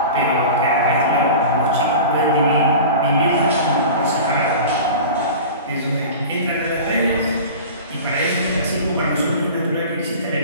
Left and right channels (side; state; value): both; inverted; correlation -0.35